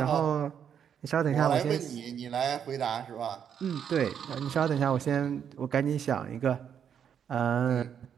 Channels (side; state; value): left; quieter; 8.3 dB